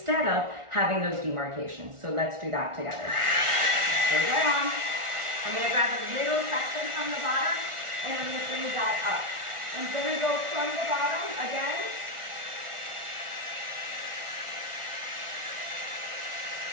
of having those demarcations. So let's do that together. Go right on. I'm gonna grab a little section from the bottom and I'm gonna bring that up. I'm gonna go from the bottom again.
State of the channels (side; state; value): left; late; 1.4 ms